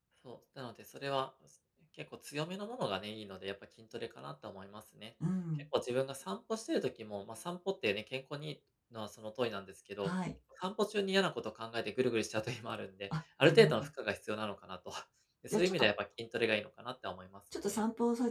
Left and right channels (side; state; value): both; identical; correlation 1.00